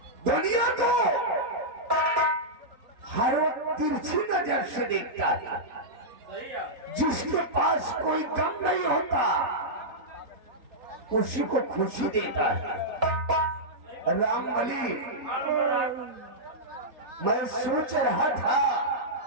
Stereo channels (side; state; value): left; late; 3.8 ms